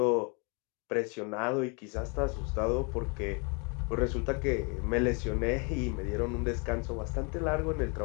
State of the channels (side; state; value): right; quieter; 34.0 dB